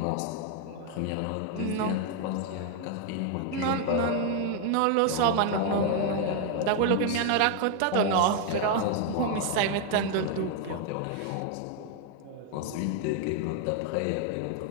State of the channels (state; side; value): different; both; correlation 0.00